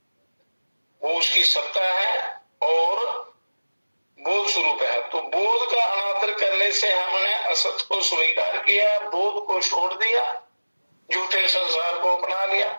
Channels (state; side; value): inverted; both; correlation -1.00